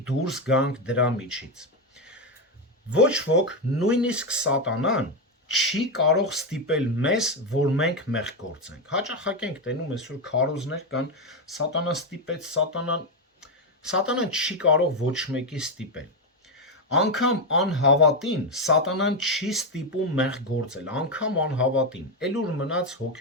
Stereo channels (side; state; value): both; normal; correlation 0.07